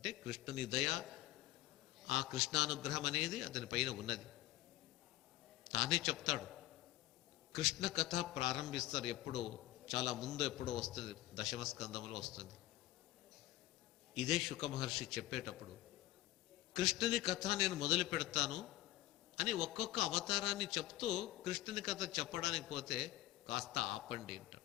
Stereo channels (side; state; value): right; quieter; 16.3 dB